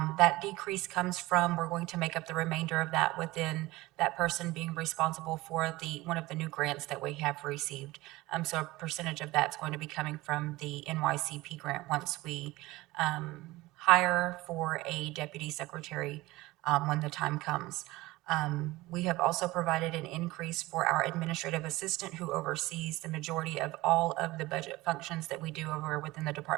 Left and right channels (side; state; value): left; quieter; 19.6 dB